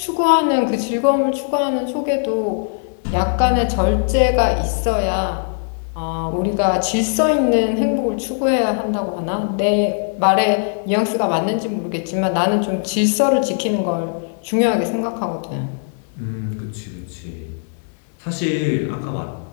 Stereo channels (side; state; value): right; silent; 64 dB below the other